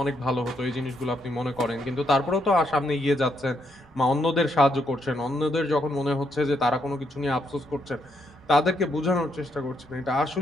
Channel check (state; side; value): normal; both; correlation 0.76